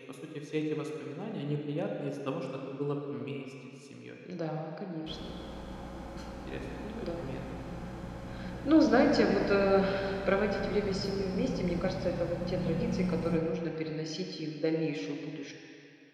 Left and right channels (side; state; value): both; identical; correlation 1.00